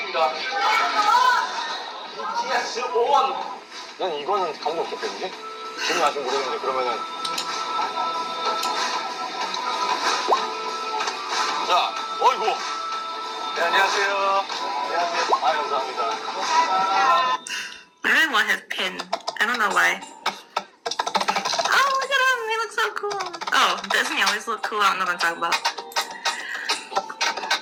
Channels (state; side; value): identical; both; correlation 1.00